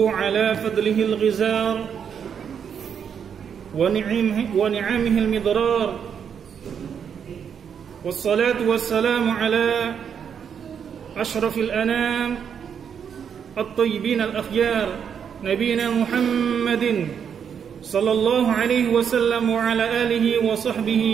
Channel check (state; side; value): quieter; left; 7.6 dB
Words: على فضله الغزار ونعمه المضرار والصلاة والسلام على أشرف الأنام الطيبين الأخيار نبينا محمد صلى الله عليه وسلم وعلى آله